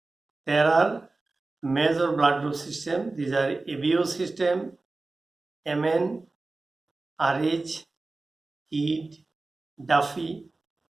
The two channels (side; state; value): left; quieter; 3.4 dB